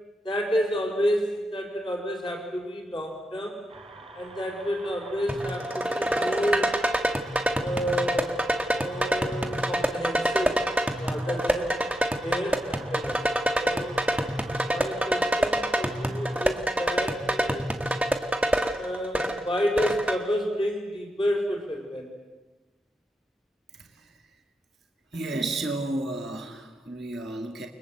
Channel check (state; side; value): normal; both; correlation 0.85